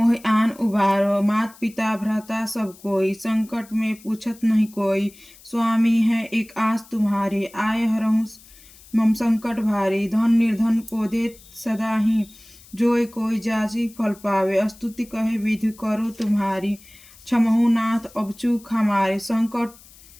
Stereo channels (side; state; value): left; noise; hiss, 23 dB below the sound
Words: आन उबारो। मात पिता भ्राता सब कोई संकट में पूछत नहीं कोई। स्वामी है एक आस तुम्हारी आए हरहु मम संकट भारी। धन निर्धन को देत सदा ही जोय कोई जाची फल पावे। स्तुति कहे विधि करो तुम्हारी क्षमहु नाथ अब चूक हमारी।